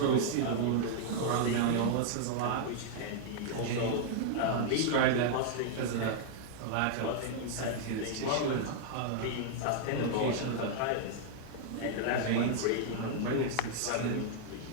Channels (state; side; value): different; both; correlation -0.01